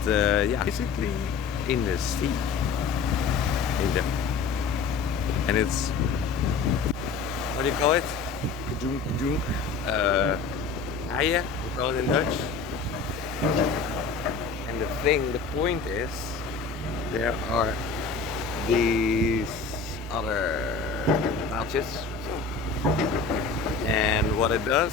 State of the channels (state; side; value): quieter; right; 4.9 dB